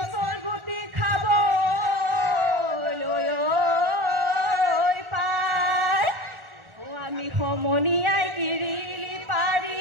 গুটি খাব পাই আমি সমনীয়াই কিৰিলি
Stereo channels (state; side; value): late; left; 1.4 ms